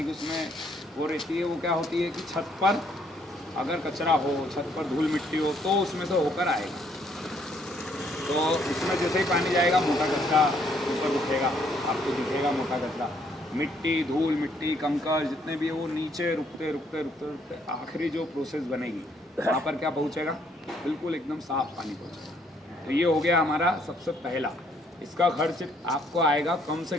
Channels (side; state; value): both; normal; correlation 0.68